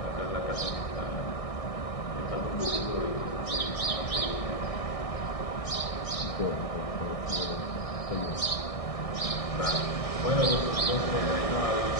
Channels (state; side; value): late; right; 1.6 ms